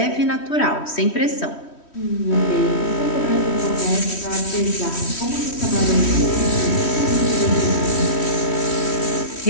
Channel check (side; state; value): right; late; 3.1 ms